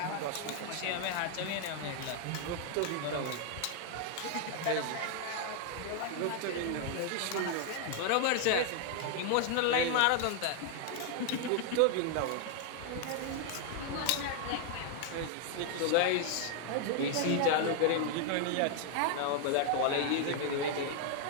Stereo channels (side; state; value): both; different; correlation 0.00